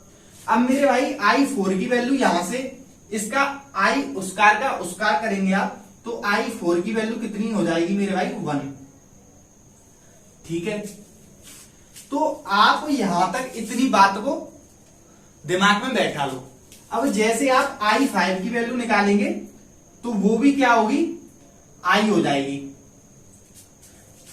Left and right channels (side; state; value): both; identical; correlation 1.00